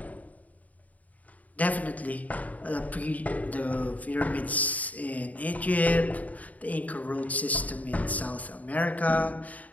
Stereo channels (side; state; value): right; late; 0.073 ms